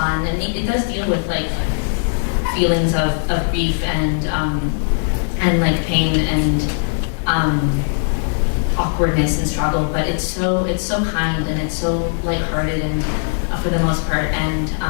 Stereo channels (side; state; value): right; silent; digital silence